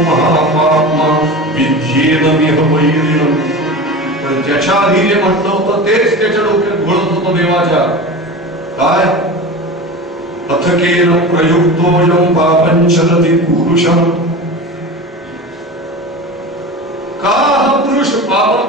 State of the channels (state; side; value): normal; both; correlation 0.30